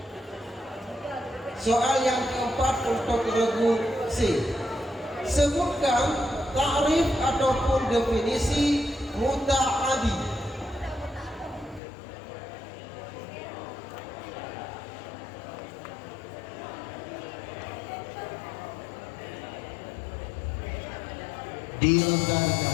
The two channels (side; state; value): right; drops out; at 11.8 s